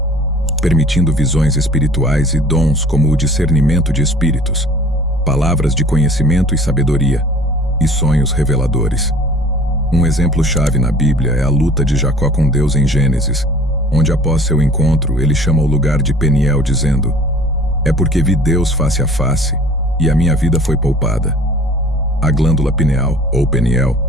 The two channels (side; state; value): both; normal; correlation 0.49